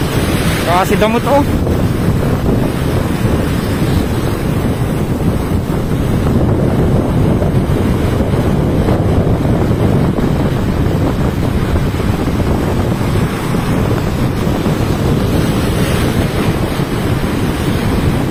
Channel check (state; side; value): identical; both; correlation 1.00